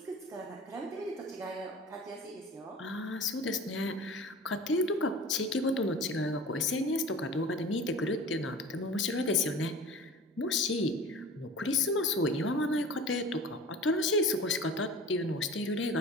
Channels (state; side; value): normal; both; correlation 0.39